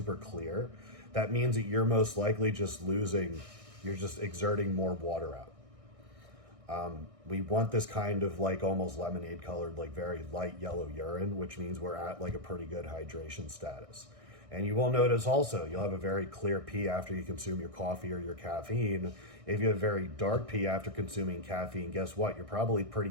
clear, that means that you're most likely you're just exerting more water out. We want this kind of like almost lemonade colored, like very light yellow urine, which means we're at like a pretty good hydration status. And you will notice also, you'll have a very clear pee after you consume your coffee or your caffeine. If you have very dark pee after consuming caffeine, guess what? You're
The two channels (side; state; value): left; late; 1.6 ms